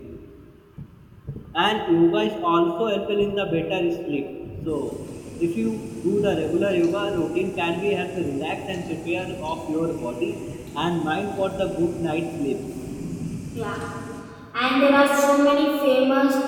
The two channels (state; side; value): identical; both; correlation 1.00